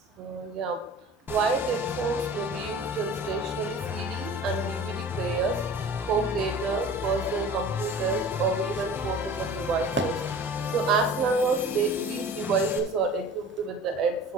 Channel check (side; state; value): both; normal; correlation 0.41